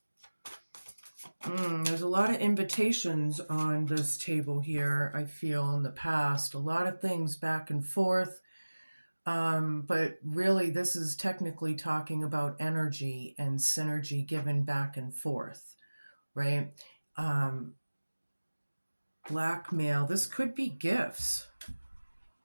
There's a lot of invitations on this table here, I feel, in the past. A lot of things back and forth. But really, this is technically talking about energy and synergy given back and forth, right? Blackmail. This could be gifts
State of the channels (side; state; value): both; inverted; correlation -1.00